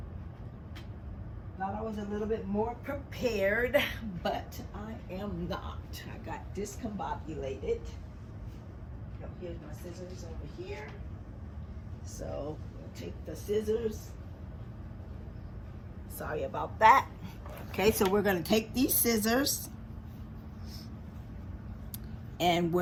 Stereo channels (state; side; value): identical; both; correlation 1.00